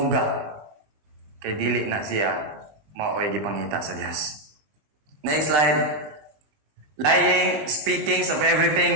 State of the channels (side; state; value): left; late; 20 ms